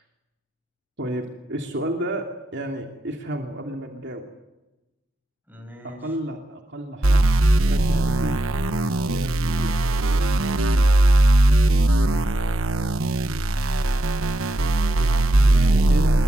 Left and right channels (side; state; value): both; normal; correlation 0.86